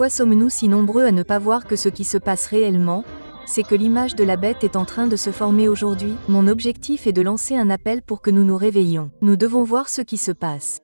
sommes-nous si nombreux à ne pas voir que ce qui se passe réellement, c'est que l'image de la bête est en train de se former aujourd'hui? Mon objectif est de lancer un appel pour que nous nous réveillions. Nous devons voir ce qui se passe.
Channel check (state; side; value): inverted; both; correlation -1.00